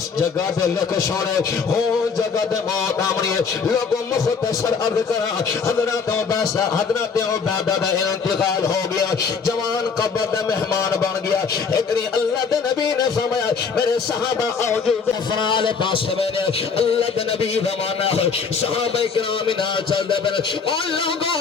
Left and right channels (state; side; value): quieter; right; 5.6 dB